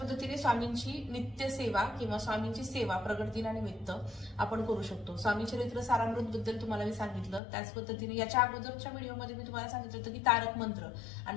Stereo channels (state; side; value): drops out; right; at 7.4 s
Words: स्वामींची नित्य सेवा किंवा स्वामींची सेवा प्रगट दिनानिमित्त आपण करू शकतो. स्वामी चरित्र सारामृत बद्दल तुम्हाला मी सांगितलं, त्याच पद्धतीने याच्या अगोदरच्या व्हिडिओमध्ये मी तुम्हाला सांगितलं होतं की तारक मंत्र